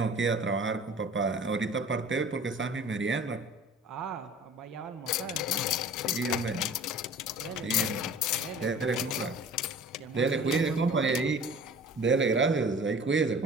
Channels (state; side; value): normal; both; correlation 0.44